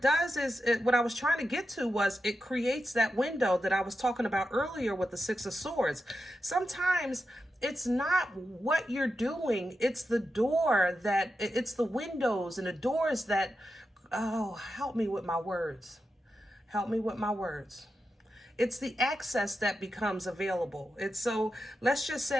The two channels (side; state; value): both; normal; correlation 0.89